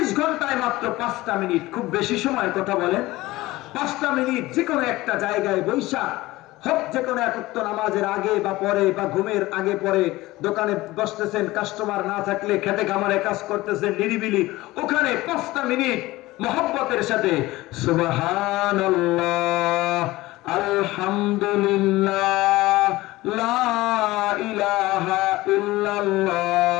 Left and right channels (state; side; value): quieter; right; 18.8 dB